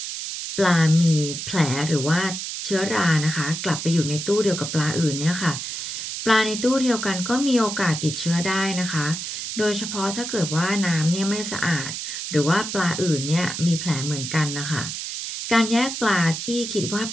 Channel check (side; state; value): right; noise; hiss, 6 dB below the sound